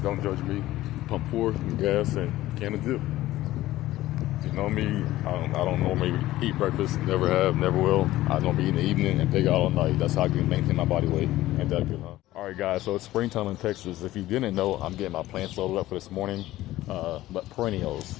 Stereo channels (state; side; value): quieter; right; 15.8 dB